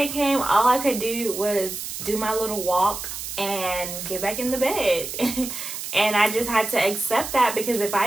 came, all I could do was do my little walk and get back in the bed. And I just had to accept that, because if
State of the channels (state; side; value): noise; right; hiss, 7 dB below the sound